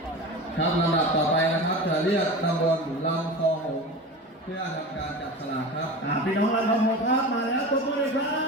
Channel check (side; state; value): both; normal; correlation 0.31